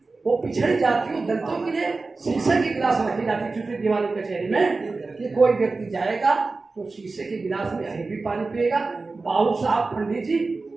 वो पिछड़ी जातियों दलितों के लिए शीशे की गिलास रखी जाती छोटी दीवानी कचहरी में, कि कोई व्यक्ति जाएगा तो शीशे के गिलास में अभी भी पानी पिएगा, बाबू साहब पंडित जी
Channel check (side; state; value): left; quieter; 3.8 dB